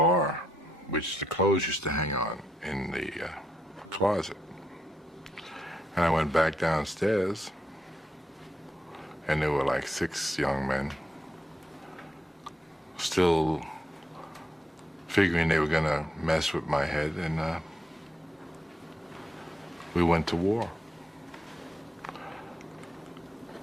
which the clothes used to hang on in the closet. And I went back downstairs and there were like 6 young men still figuring they were gonna mess with my head, and we went to war.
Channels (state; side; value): normal; both; correlation 0.81